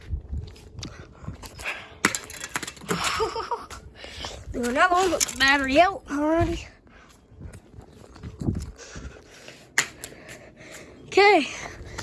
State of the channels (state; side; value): identical; both; correlation 1.00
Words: Do another one with the battery out already. Okay.